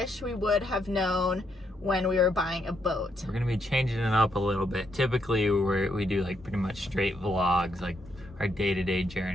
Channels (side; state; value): both; normal; correlation 0.77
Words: we would have known when we were buying a boat. We're going to be changing it up a little bit. Typically we do like pretty much straight vlogs, like our day-to-day